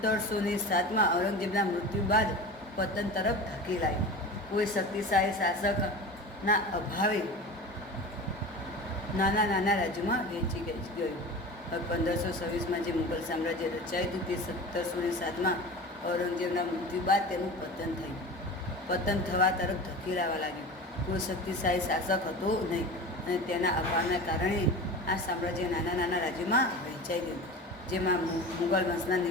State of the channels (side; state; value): both; normal; correlation 0.32